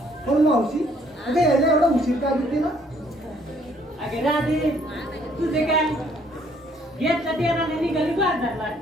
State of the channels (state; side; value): normal; both; correlation 0.64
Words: पण मावशी अगं यायला एवढा उशीर का घेते ना? अगे राधे तुझे काय घेतला तेराने निघाली बाजारला